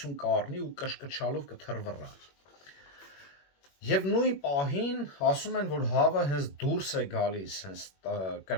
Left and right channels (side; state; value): right; late; 21 ms